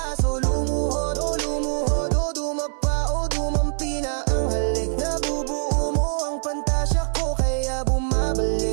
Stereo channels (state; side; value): silent; left; 63 dB below the other